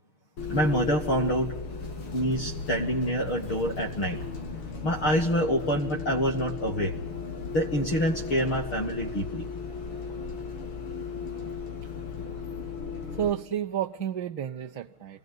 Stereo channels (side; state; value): right; late; 6.5 ms